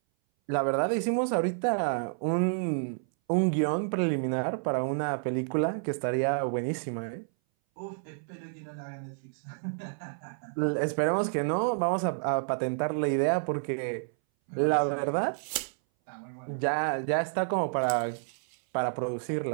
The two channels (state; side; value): silent; left; 58 dB below the other